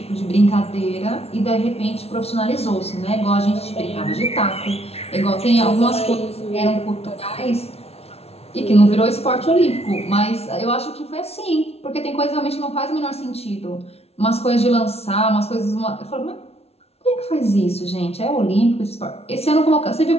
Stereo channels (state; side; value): late; right; 0.30 ms